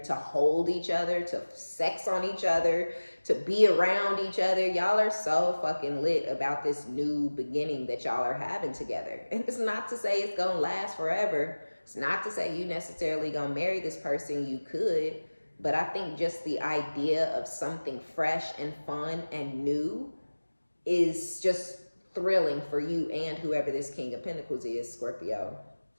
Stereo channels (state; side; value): inverted; both; correlation -1.00